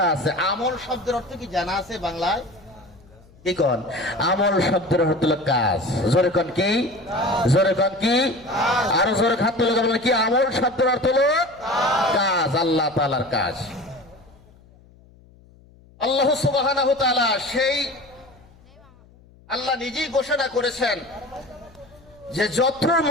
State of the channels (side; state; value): left; noise; hum, 27 dB below the sound